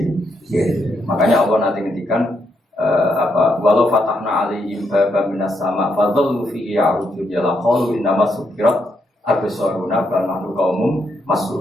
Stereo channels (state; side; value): normal; both; correlation 0.78